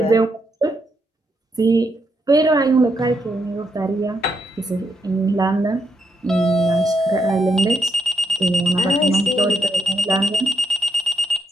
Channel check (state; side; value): normal; both; correlation 0.80